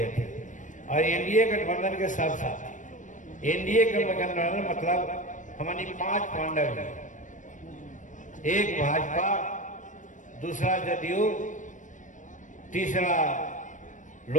थे, और एनडीए गठबंधन के सब साथी। एनडीए के गठबंधन मतलब हमारी 5 पांडव हैं, एक भाजपा, दूसरा जदयू, तीसरा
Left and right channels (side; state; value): right; late; 0.37 ms